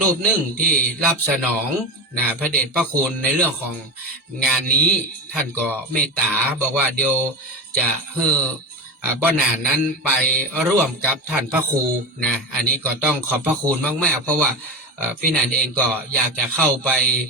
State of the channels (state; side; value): normal; both; correlation 0.23